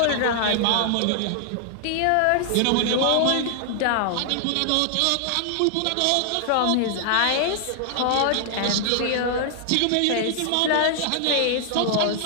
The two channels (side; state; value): both; different; correlation 0.00